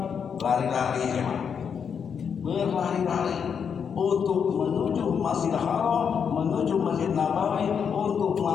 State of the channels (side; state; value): right; quieter; 7.0 dB